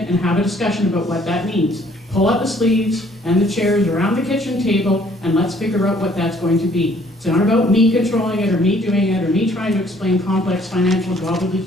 and have a discussion about what that means. Pull up the sleeves and the chairs around the kitchen table, and let's figure out what that's going to be. It's not about me controlling it, or me doing it, or me trying to explain complex financial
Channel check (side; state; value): both; normal; correlation 0.61